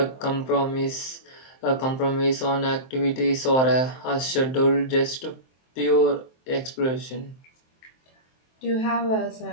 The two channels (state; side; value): late; right; 23 ms